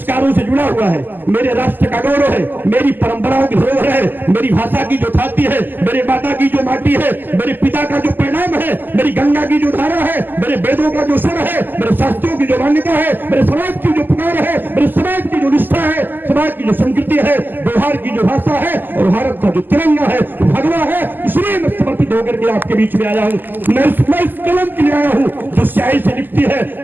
से जुड़ा हुआ है, मेरे राष्ट्र का गौरव है, मेरी परंपराओं की धरोहर है, मेरी भाषा की जो छाती है, मेरे माता की जो माटी है, मेरे पिता का जो परिणाम है, मेरी गंगा की जो धारा है, मेरे वेदों का जो स्वर है, मेरे शास्त्रों की जो मान्यता है, मेरे समाज की जो पुकार है, मेरे समाज की जो निष्ठा है, समाज की जो संस्कृति है, व्यवहार की जो भाषा है और भारत का जो तिरंगा है, जो भगवा है, इसलिए मैं समर्पित होकर के आपके बीच में आया हूँ। मैं इस कलम के लिए आया हूँ जो स्याही से लिखती है,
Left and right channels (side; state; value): left; late; 0.090 ms